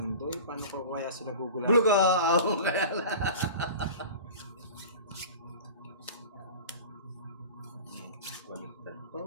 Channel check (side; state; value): both; inverted; correlation -0.36